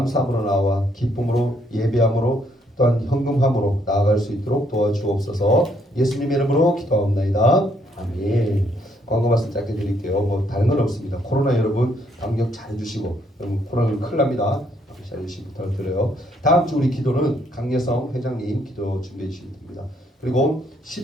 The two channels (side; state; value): both; normal; correlation 0.70